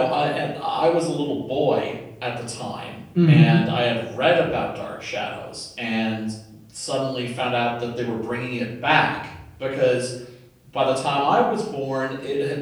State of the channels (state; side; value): identical; both; correlation 1.00